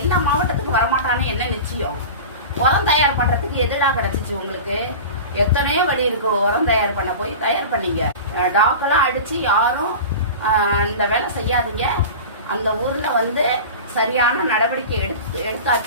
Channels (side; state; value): both; inverted; correlation -0.32